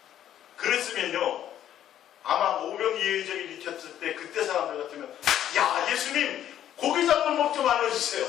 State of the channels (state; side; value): quieter; right; 11.1 dB